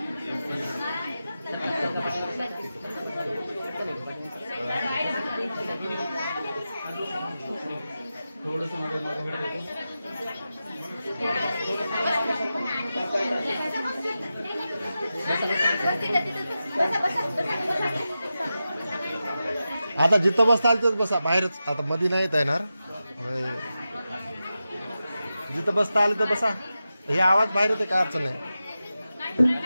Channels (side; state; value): both; inverted; correlation -0.92